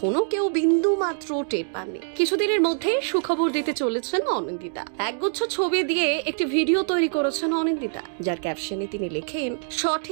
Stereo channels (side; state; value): left; silent; digital silence